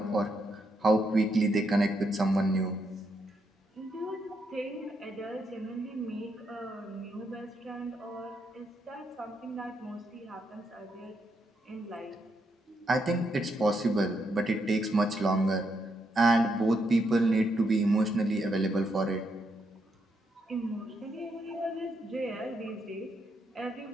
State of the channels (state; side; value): normal; both; correlation 0.79